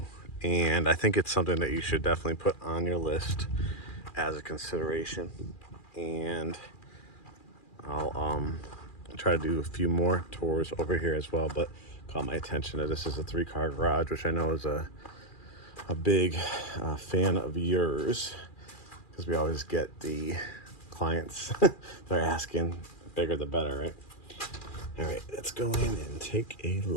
and I think it's something that you should definitely put on your list as a consideration. And I'll try to do a few more tours over here as well, but caught my attention that this is a 3-car garage, which I know is a big fan of yours, because we always get the clients they're asking bigger the better, right? All right, let's go in and take a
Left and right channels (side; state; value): right; late; 2.4 ms